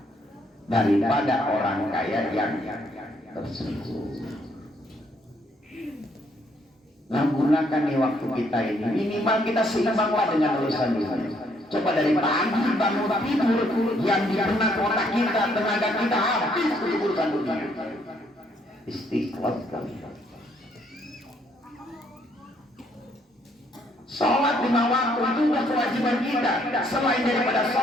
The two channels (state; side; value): normal; both; correlation 0.69